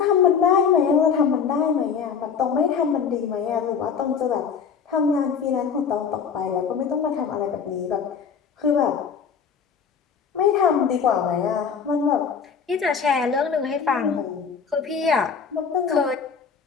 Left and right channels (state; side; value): quieter; right; 6.5 dB